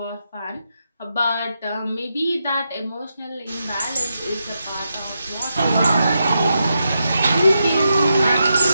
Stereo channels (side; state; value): both; inverted; correlation -0.85